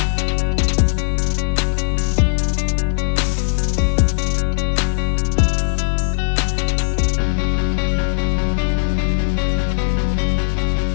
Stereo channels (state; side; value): silent; right; digital silence